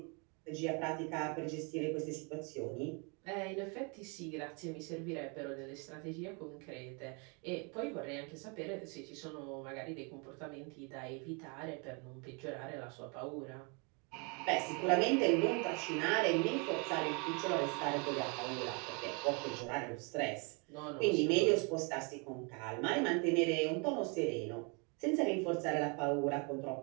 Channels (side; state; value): left; quieter; 33.4 dB